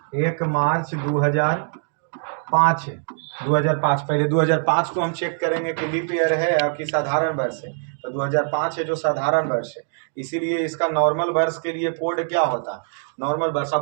2005 है, 2005। पहले 2005 को हम चेक करेंगे कि लीप ईयर है और कि साधारण वर्ष है, तो 2005 है जो साधारण वर्ष है, इसीलिए इसका नॉर्मल वर्ष के लिए कोड क्या होता है, नॉर्मल वर्ष।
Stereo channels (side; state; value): left; silent; 64 dB below the other